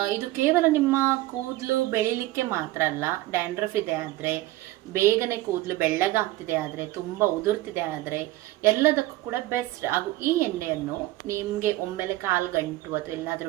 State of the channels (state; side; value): quieter; left; 17.0 dB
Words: ಇದು ಕೇವಲ ನಿಮ್ಮ ಕೂದಲು ಬೆಳಿಲಿಕ್ಕೆ ಮಾತ್ರ ಅಲ್ಲ. ಡ್ಯಾಂಡ್ರಫ್ ಇದೆ ಆದರೆ, ಬೇಗನೆ ಕೂದಲು ಬೆಳ್ಳಗಾಗ್ತಿದೆ ಆದರೆ, ತುಂಬ ಉದುರ್ತಿದೆ ಆದರೆ ಎಲ್ಲದಕ್ಕೂ ಕೂಡ ಬೆಸ್ಟ್. ಹಾಗೂ ಈ ಎಣ್ಣೆಯನ್ನು ನಿಮಗೆ ಒಮ್ಮೆಲೆ ಕಾಲು ಗಂಟು ಅಥವಾ